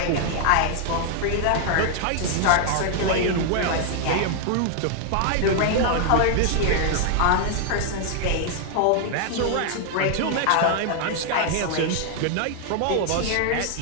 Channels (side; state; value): both; different; correlation 0.00